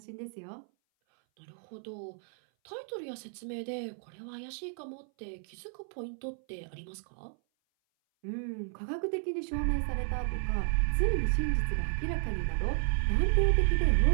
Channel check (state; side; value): silent; left; 56 dB below the other